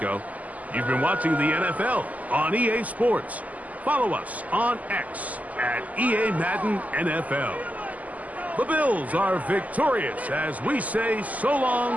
You've been watching the NFL on EA Sports. Follow us on X at EA Madden NFL. The Bills are victorious as we say so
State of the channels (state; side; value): late; left; 0.076 ms